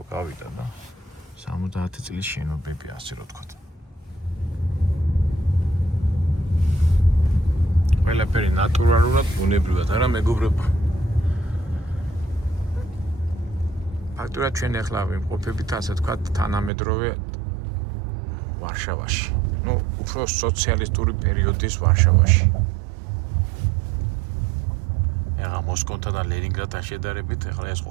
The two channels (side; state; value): left; drops out; at 16.7 s